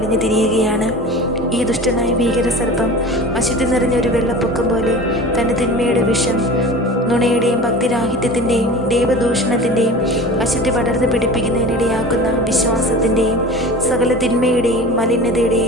തിരിയുകയാണ്. ഈ ദുഷ്ടനായ ഭീകര സർപ്പം അശുദ്ധി നിറഞ്ഞൊരു വെള്ളപ്പൊക്കം പോലെ തൻ്റെ തിന്മയുടെ വിഷം, നുണയുടെയും ഭക്തിരാഹിത്യത്തിൻ്റെയും ദൈവദൂഷണത്തിൻ്റെയും അശുദ്ധി പടർന്ന് പിടിപ്പിക്കുന്നതിനിടയാക്കുന്ന വിശ്വാസത്തിൻ്റെയും സകല തിന്മയുടെയും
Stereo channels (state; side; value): normal; both; correlation 0.37